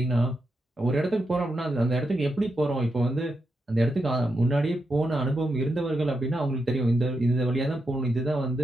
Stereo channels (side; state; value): both; normal; correlation 0.85